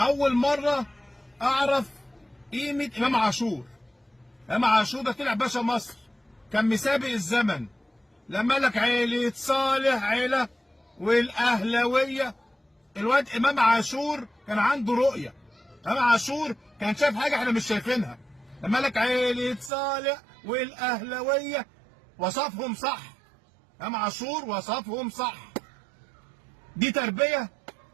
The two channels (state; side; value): drops out; left; at 19.7 s